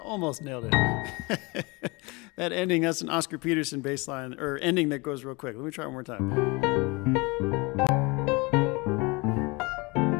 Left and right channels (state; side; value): quieter; right; 26.4 dB